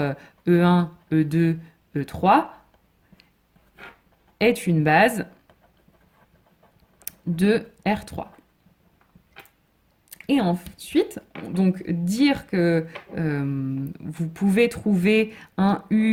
E1, E2, E3 est une base de R3. Et ensuite, donc dire que vous pouvez trouver un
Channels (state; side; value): identical; both; correlation 1.00